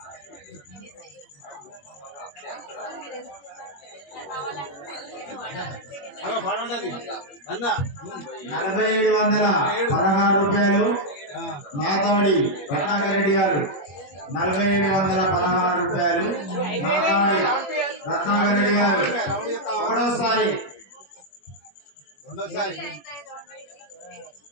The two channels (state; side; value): late; right; 21 ms